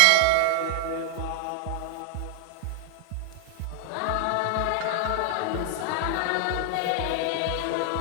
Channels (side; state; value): both; different; correlation -0.01